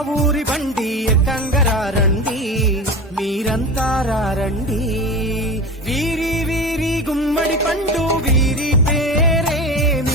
ఊరి బండి ఎక్కంగరారండి, మీరంతా రారండి. వీరి వీరి గుమ్మడి పండు వీరి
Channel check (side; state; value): both; normal; correlation 0.29